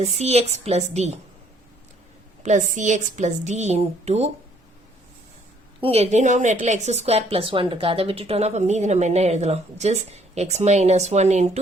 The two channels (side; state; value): both; normal; correlation 0.64